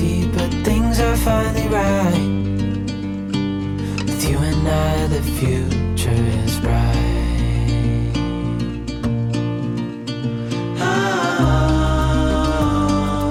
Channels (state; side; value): identical; both; correlation 1.00